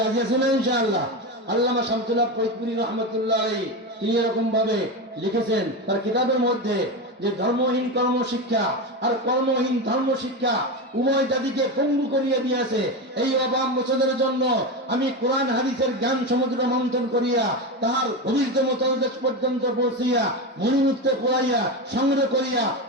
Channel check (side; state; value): both; normal; correlation 0.18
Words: রাজি আছে না ইনশাআল্লাহ? আল্লামা শামসুল্লাহ ফরিদপুরি রহমতুল্লাহ আলাইহি তিনি এরকম ভাবে লিখেছেন তার কিতাবের মধ্যে যে ধর্মহীন কর্মশিক্ষা আর কর্মহীন ধর্ম শিক্ষা উভয় জাতিকে পঙ্গু করিয়া দিয়েছে। এই অভাব মোচনের জন্য আমি কোরআন হাদিসের জ্ঞান সমুদ্র মন্থন করিয়া তাহার গভীরতম তলদেশ পর্যন্ত পৌঁছিয়া মণিমুক্তে পড়াইয়া সংগ্রহ করিয়া